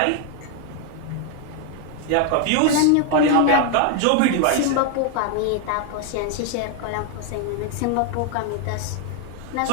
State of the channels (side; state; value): both; different; correlation 0.00